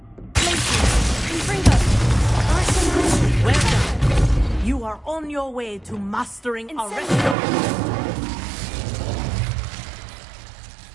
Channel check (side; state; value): left; drops out; at 7.4 s